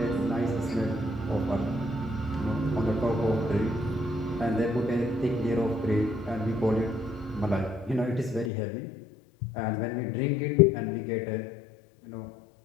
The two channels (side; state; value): right; drops out; at 8.5 s